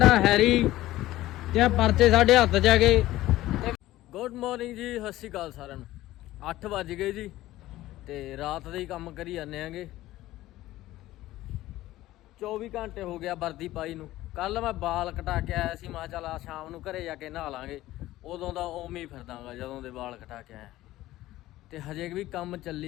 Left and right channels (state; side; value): quieter; right; 15.9 dB